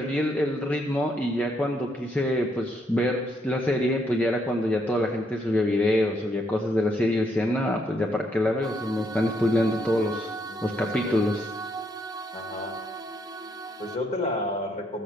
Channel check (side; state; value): both; normal; correlation 0.74